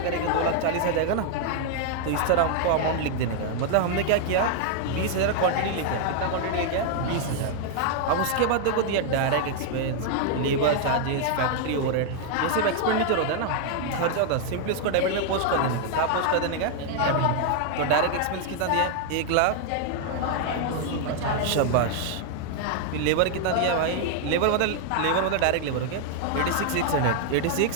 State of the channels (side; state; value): both; different; correlation 0.00